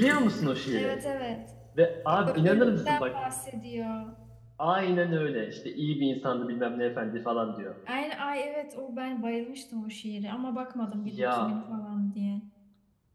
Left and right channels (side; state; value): both; identical; correlation 1.00